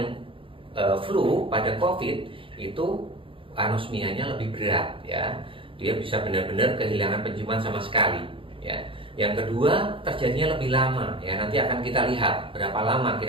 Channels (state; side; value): late; left; 0.25 ms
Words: flu, pada COVID itu anosmianya lebih berat ya. Dia bisa benar-benar kehilangan penciuman sama sekali ya. Yang kedua, terjadinya lebih lama ya. Nanti akan kita lihat berapa lama